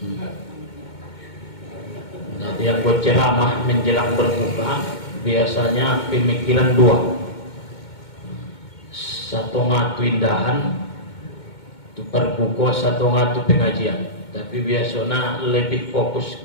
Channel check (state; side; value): late; right; 2.2 ms